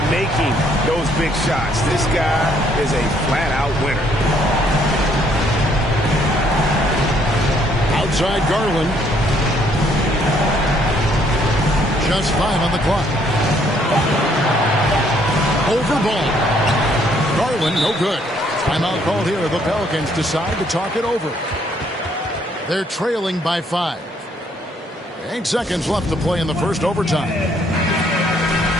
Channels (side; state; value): both; normal; correlation 0.67